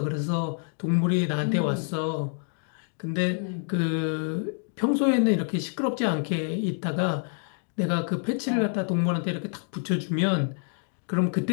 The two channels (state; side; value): silent; right; 60 dB below the other